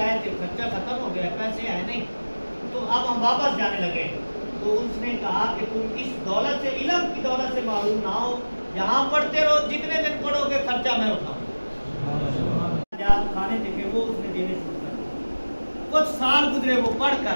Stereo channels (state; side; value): inverted; both; correlation -1.00